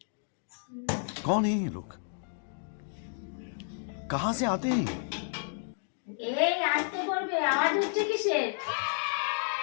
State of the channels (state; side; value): silent; right; digital silence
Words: कौन है ये लोग? कहां से आते हैं? এই আসতে করবে, আওয়াজ হচ্ছে কিসের?